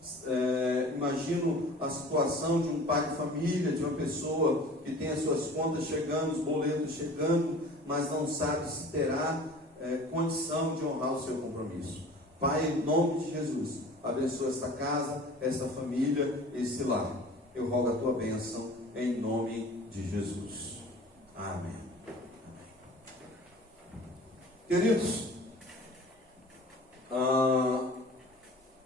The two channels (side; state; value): both; normal; correlation 0.43